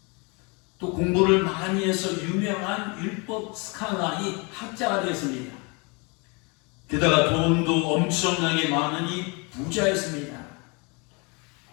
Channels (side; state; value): right; quieter; 30.5 dB